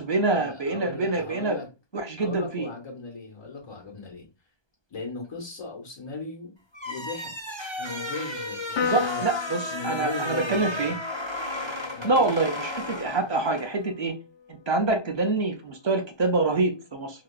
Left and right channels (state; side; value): late; right; 1.2 ms